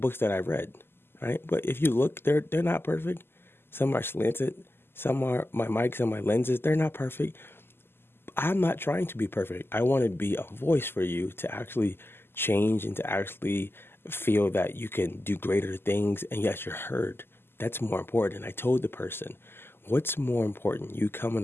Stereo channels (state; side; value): late; right; 0.11 ms